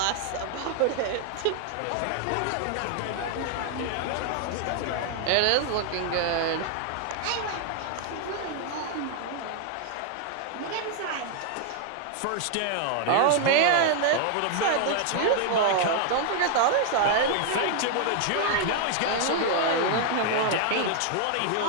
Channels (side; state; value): both; different; correlation 0.00